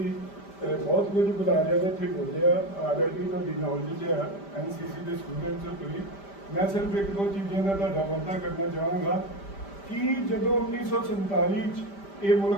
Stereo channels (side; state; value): right; late; 5.1 ms